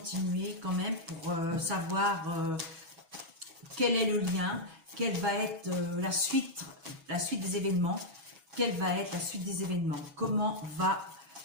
quand même pour savoir quel est le lien, quelle va être la suite des événements, quelle va être la suite des événements, comment va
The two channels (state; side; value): late; left; 6.2 ms